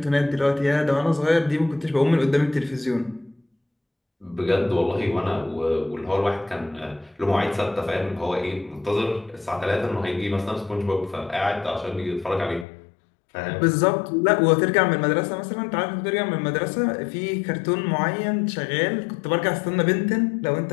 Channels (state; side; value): drops out; right; at 12.7 s